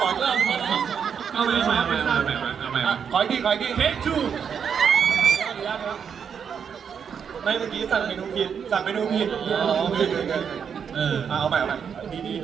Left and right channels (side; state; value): left; quieter; 7.2 dB